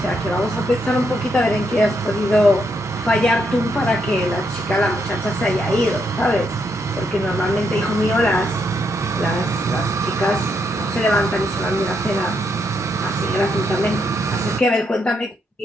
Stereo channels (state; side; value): normal; both; correlation 0.78